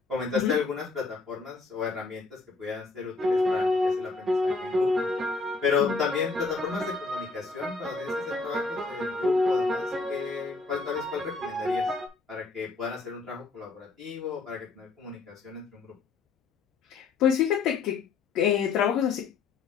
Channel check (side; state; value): right; quieter; 4.0 dB